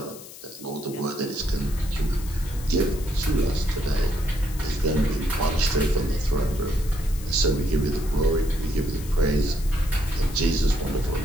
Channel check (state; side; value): noise; left; hiss, 16 dB below the sound